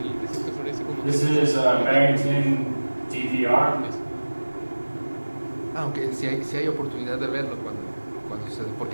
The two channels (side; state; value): both; inverted; correlation -1.00